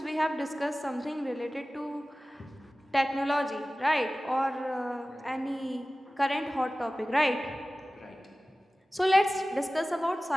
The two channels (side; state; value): both; normal; correlation 0.97